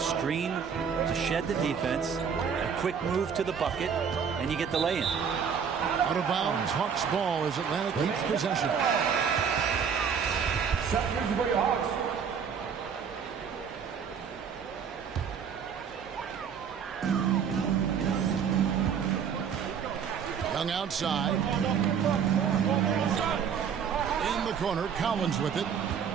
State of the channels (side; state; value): left; quieter; 7.1 dB